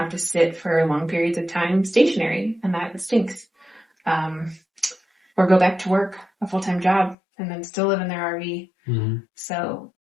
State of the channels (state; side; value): drops out; right; at 7.2 s